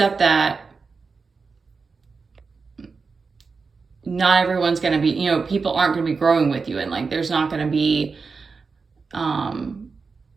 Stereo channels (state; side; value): quieter; left; 4.7 dB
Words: that not everyone's going to be, you know, people aren't going to be growing with you, and like there's not going to be